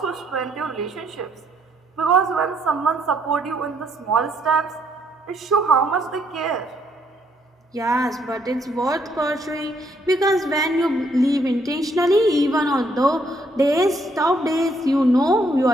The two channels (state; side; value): normal; both; correlation 0.70